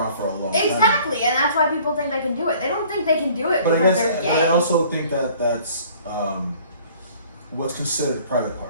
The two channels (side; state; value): both; inverted; correlation -0.53